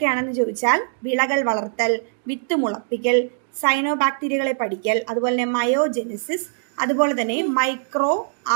ചോദിച്ചാൽ വിളകൾ വളർത്തൽ, വിത്ത് മുളപ്പിക്കൽ, സൈനോബാക്ടീരിയകളെ പഠിക്കൽ, അതുപോലെ തന്നെ മയോജെനിസിസ്, അതുപോലെ തന്നെ മൈക്രോ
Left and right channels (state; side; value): silent; left; digital silence